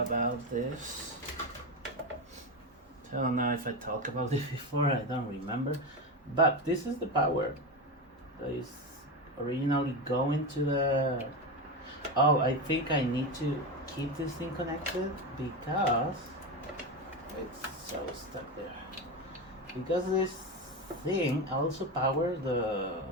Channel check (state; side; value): normal; both; correlation 0.17